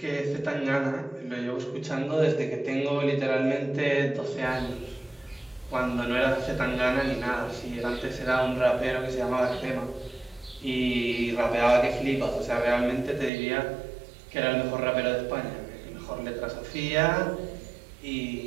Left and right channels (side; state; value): left; drops out; at 13.3 s